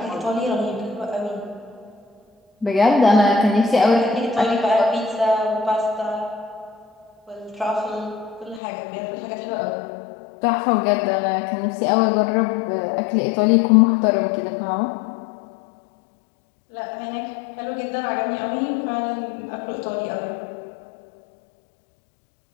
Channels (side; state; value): right; drops out; at 8.6 s